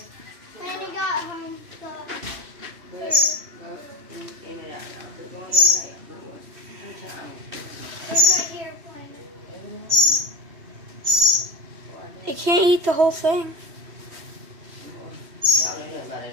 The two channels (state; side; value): late; left; 3.1 ms